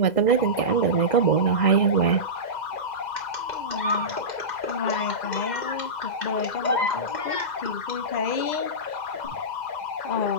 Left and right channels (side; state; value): right; late; 2.0 ms